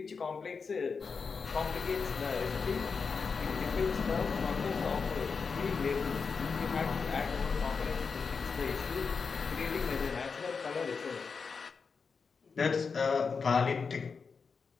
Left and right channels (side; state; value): right; quieter; 5.2 dB